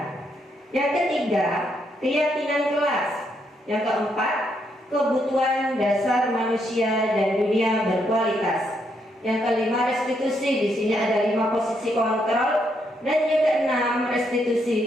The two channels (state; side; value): normal; both; correlation 0.76